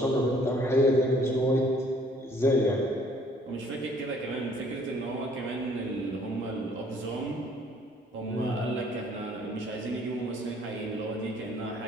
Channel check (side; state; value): both; normal; correlation 0.59